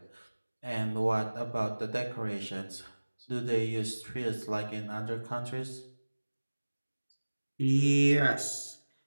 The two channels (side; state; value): both; inverted; correlation -1.00